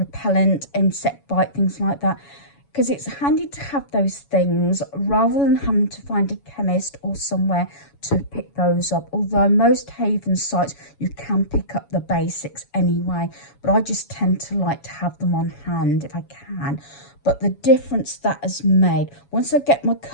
insect bite, things like that, because it's handy to have those things rather than having to find a chemist or somewhere to pick those up. Although most haven sites you can pick up the basics anyway, but I just tend to like to have them on hand if I can. But the difference that has made, once I get my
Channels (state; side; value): late; right; 7.1 ms